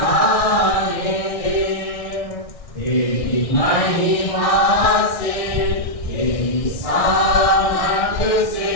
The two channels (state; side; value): late; right; 1.6 ms